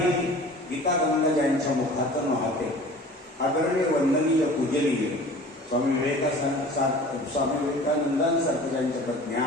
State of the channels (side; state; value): both; normal; correlation 0.43